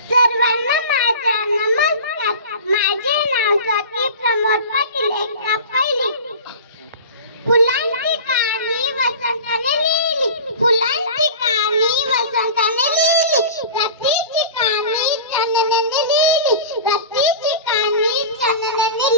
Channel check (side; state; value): both; inverted; correlation -0.35